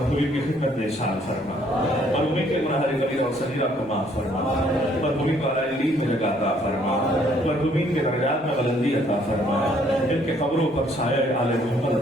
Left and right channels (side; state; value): both; normal; correlation 0.64